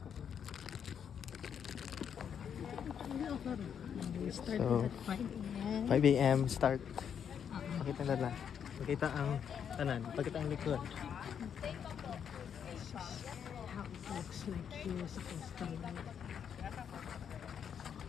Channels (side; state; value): right; quieter; 8.0 dB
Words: We started So, at 5 a.m. 5 a.m. start. Pakita na lang. Pakita ang tanan. Pakita ang likod. This is how it looks like here sa coastal line.